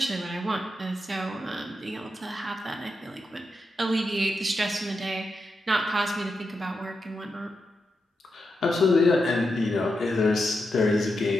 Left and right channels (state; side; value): normal; both; correlation 0.87